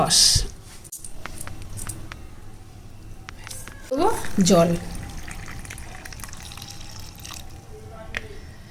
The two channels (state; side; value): identical; both; correlation 1.00